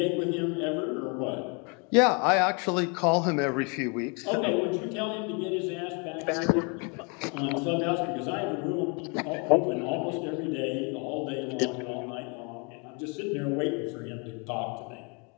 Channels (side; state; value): right; quieter; 33.7 dB